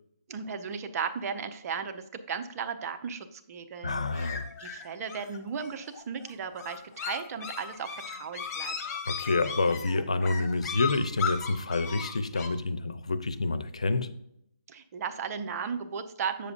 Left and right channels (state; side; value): inverted; both; correlation -0.65